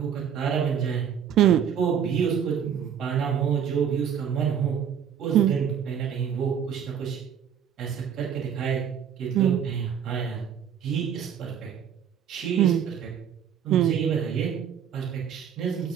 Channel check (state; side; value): quieter; left; 8.3 dB